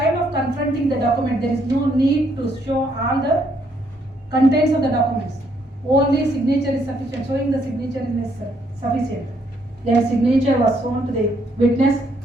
of confronting the document, there is no need to show all the contents of the documents. Only signature is sufficient. Showing the signature is sufficient. Their signature was shown to the witness.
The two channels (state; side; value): normal; both; correlation 0.71